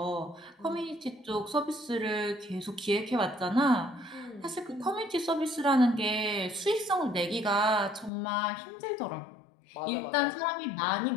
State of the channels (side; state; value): right; drops out; at 8.1 s